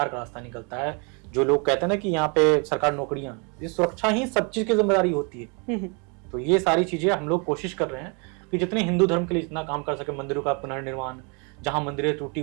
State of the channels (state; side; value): quieter; left; 34.1 dB